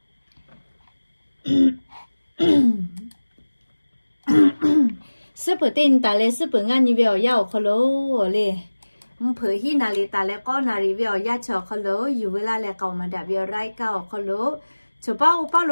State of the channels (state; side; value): inverted; both; correlation -1.00